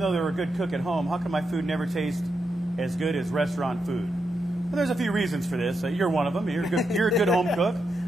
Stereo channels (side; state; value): both; normal; correlation 0.84